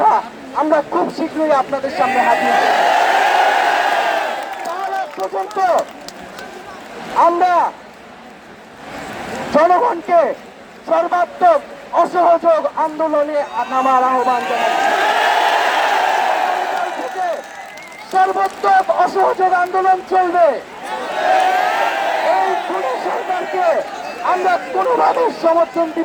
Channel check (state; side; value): identical; both; correlation 1.00